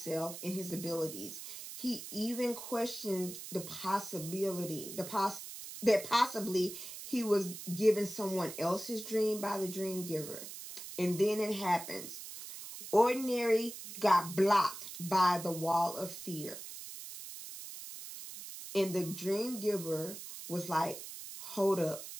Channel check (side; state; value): right; noise; hiss, 11 dB below the sound